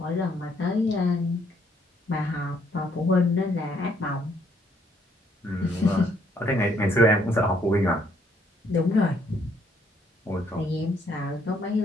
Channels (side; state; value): both; normal; correlation 0.68